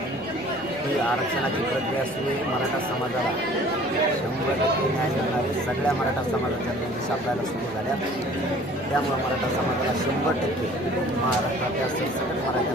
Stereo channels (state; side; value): noise; left; rumble, 26 dB below the sound